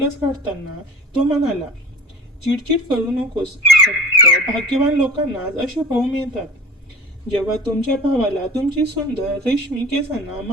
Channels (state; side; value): normal; both; correlation 0.39